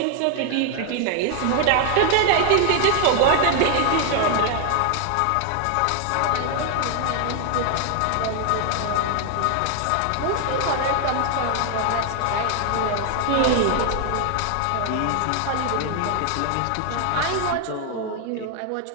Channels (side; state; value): both; different; correlation 0.00